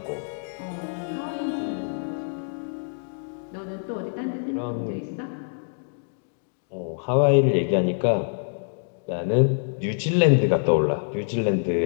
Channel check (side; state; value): right; silent; digital silence